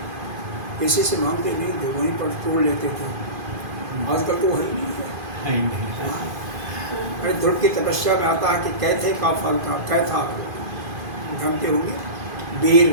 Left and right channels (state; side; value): late; left; 2.5 ms